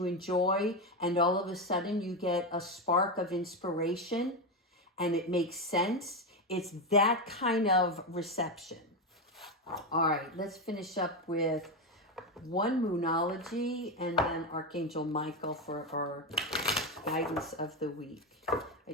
enjoy and all of a sudden you get a spark of inspiration and it makes sense. It's that kind of reception. All right, let's finish up with one Moonology and then Archangel Michael for our guidance of the week. I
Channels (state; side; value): normal; both; correlation 0.12